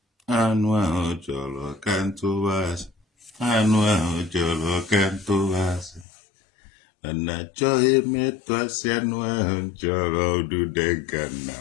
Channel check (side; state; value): right; drops out; at 6.1 s